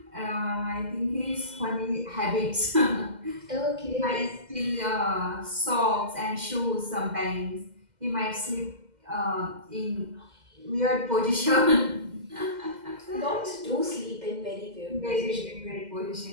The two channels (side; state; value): left; late; 2.0 ms